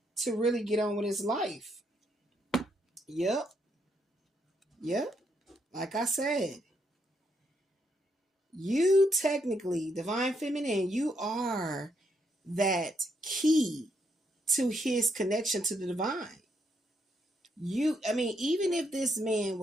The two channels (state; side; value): normal; both; correlation 0.76